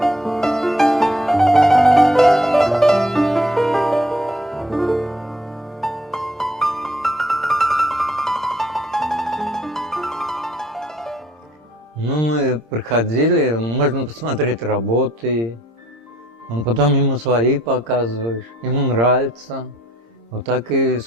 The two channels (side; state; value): both; normal; correlation 0.63